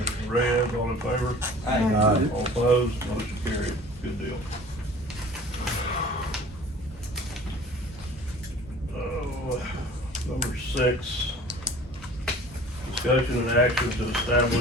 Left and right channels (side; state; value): both; normal; correlation 0.46